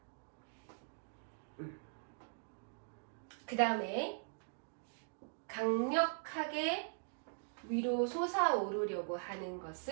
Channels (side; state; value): left; silent; digital silence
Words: 그 다음에 강력하게 위로 솟아오르려고 하는